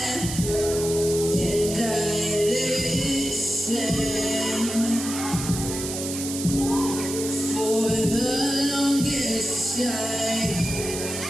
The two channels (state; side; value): noise; right; hiss, 6 dB below the sound